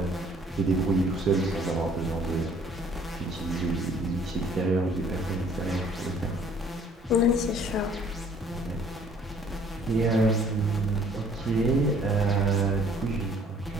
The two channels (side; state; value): both; normal; correlation 0.58